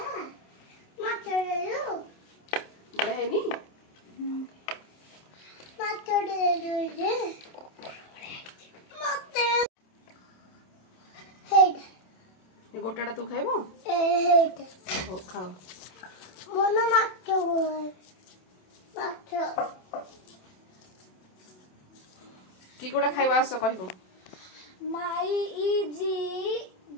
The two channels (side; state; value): right; late; 27 ms